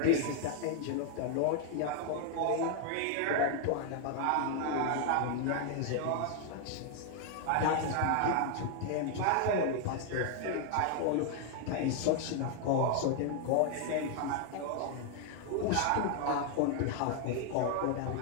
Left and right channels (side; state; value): both; different; correlation 0.00